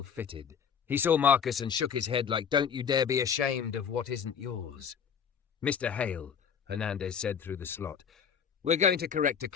fitted. He saw Marcus and shook his head like, "Don't you dare be ashamed of what isn't yours." "Mr. Hale," Hernandez said through the slot, "we're going to correct a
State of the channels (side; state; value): right; quieter; 7.3 dB